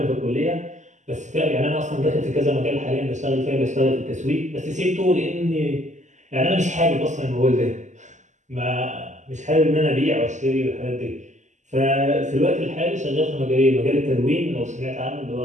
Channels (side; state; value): left; late; 0.34 ms